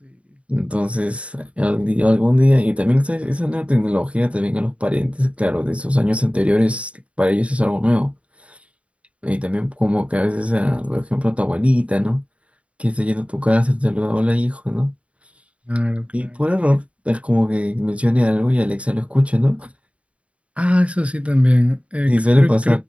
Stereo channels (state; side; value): late; left; 0.063 ms